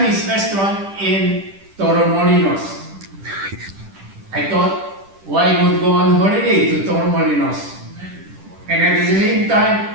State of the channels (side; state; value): left; late; 10 ms